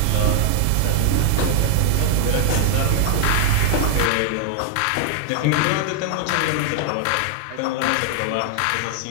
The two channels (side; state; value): both; different; correlation 0.00